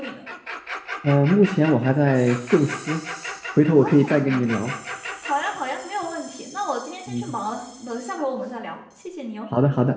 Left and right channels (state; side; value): identical; both; correlation 1.00